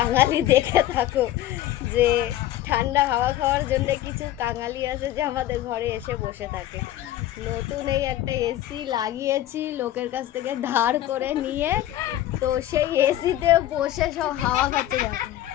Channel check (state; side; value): quieter; right; 13.3 dB